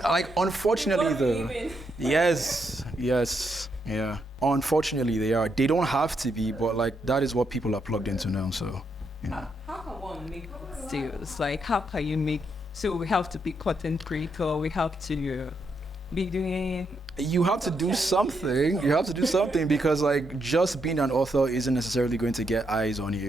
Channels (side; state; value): both; normal; correlation 0.79